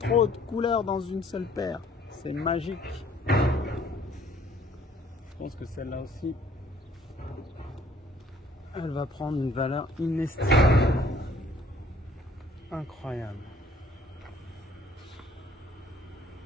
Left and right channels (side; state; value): both; normal; correlation 0.59